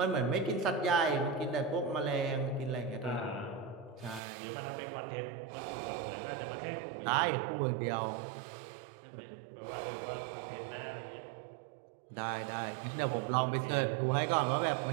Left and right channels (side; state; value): left; drops out; at 4.2 s